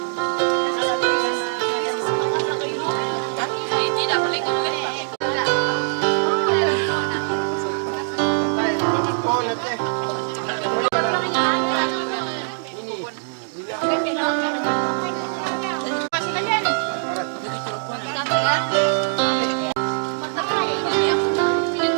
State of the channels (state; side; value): silent; left; digital silence